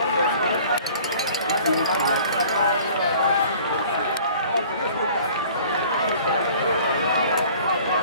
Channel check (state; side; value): inverted; both; correlation -0.49